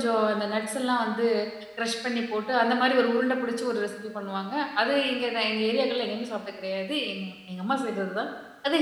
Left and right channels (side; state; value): both; identical; correlation 1.00